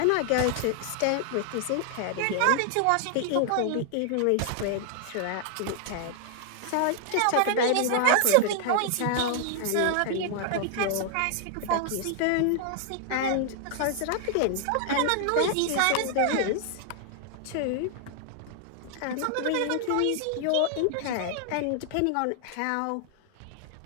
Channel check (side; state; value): both; different; correlation 0.00